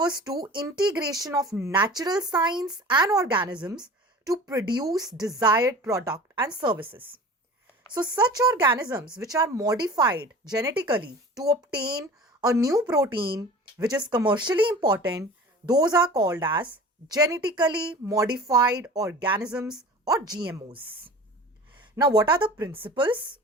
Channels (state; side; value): normal; both; correlation 0.39